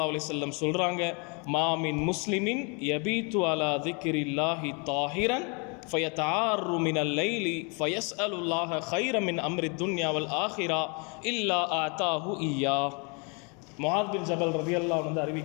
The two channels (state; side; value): quieter; right; 33.7 dB